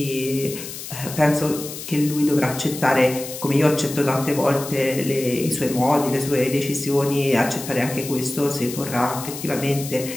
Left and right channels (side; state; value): left; noise; hiss, 10 dB below the sound